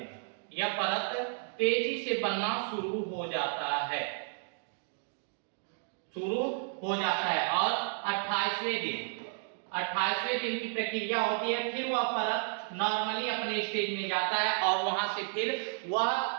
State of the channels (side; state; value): left; silent; 56 dB below the other